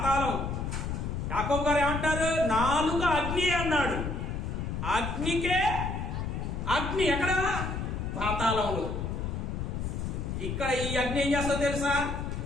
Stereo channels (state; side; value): noise; left; rumble, 3 dB below the sound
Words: యాకోబు గారు ఏమంటారు? నాలుక అగ్ని అన్నాడు. అగ్నికే అగ్ని ఎక్కడ? పాతాళంలో. ఇక్కడ ఈ అగ్ని ఏం చేస్తా తెలుసా?